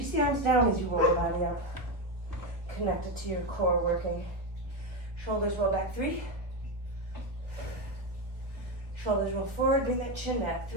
the arms down as you roll the body up. Connect it to your core working. Shoulders roll back. 3. Shoulders roll forward. Bring that chin back.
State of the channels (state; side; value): late; left; 1.0 ms